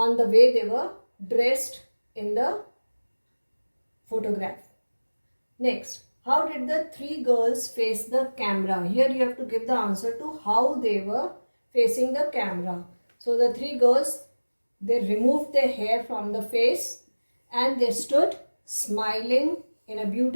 the way they were dressed in the photograph. Next, how did the 3 girls face the camera? Here you have to give the answer to how they were facing the camera. So the 3 girls, they removed their hair from the face and they stood smiling in a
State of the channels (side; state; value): both; inverted; correlation -1.00